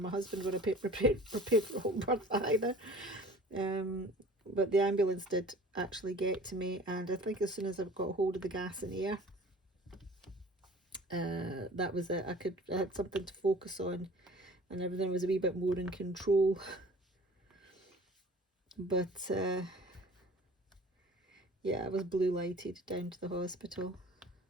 husband were prepared for a home birth either. But the ambulance did actually get to me, and I think as soon as I got hold of the gas and air, that was it. I had something to focus on, and everything was a wee bit more in control. But yeah, I was blue lighted down to the hospital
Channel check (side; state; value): both; normal; correlation 0.46